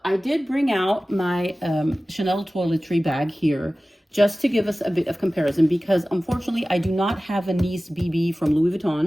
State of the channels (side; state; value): both; normal; correlation 0.97